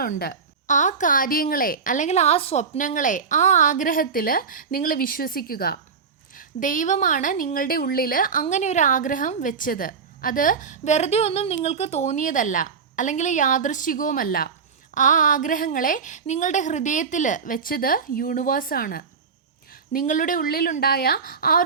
ആ കാര്യങ്ങളെ അല്ലെങ്കിൽ ആ സ്വപ്നങ്ങളെ, ആ ആഗ്രഹത്തിൽ നിങ്ങൾ വിശ്വസിക്കുക. ദൈവമാണ് നിങ്ങളുടെ ഉള്ളിൽ അങ്ങനെ ഒരു ആഗ്രഹം വെച്ചത്. അത് വെറുതെ ഒന്നും നിങ്ങൾക്ക് തോന്നിയതല്ല, അല്ലെങ്കിൽ യാദൃശ്ചികവുമല്ല. ആ ആഗ്രഹങ്ങളെ നിങ്ങളുടെ ഹൃദയത്തിൽ വെച്ചത് യൂണിവേഴ്സാണ്. നിങ്ങളുടെ ഉള്ളിലുണ്ടായ ആ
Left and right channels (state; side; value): quieter; left; 5.7 dB